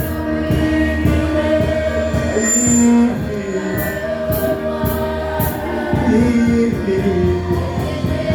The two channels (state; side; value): identical; both; correlation 1.00